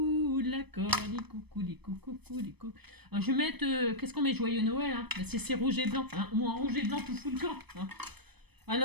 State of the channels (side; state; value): left; late; 0.98 ms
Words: la colle, coule. Alors, je vais mettre, qu'est-ce qu'on met? Joyeux Noël, hein. Ben, c'est rouge et blanc, hein. Moi, en rouge et blanc, tout fout le camp. Hein.